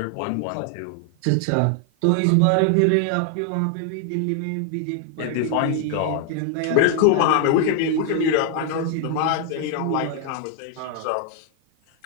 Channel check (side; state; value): both; different; correlation 0.00